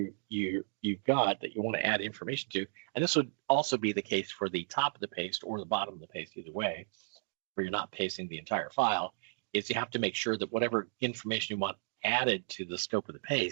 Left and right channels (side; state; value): left; silent; digital silence